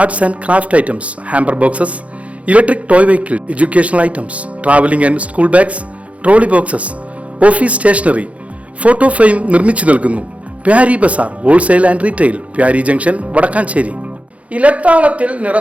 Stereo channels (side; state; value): left; late; 0.065 ms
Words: and craft items, hamper boxes, electric toy vehicle, educational items, traveling and school bags, trolley boxes, office stationery, photo frame നിർമ്മിച്ചു നൽകുന്നു. Pyari Bazaar Wholesale and Retail, Pyari Junction, Padakkancherry. ഇലത്താളത്തിൽ